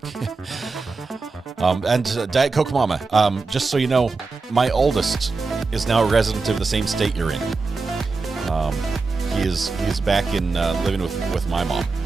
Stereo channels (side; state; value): left; quieter; 4.1 dB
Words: And Diet Coke Mama, just so you know, my oldest is now a resident of the same state you're in. he is back in living with my mom.